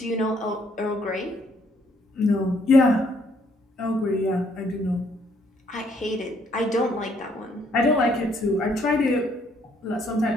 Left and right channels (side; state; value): both; normal; correlation 0.68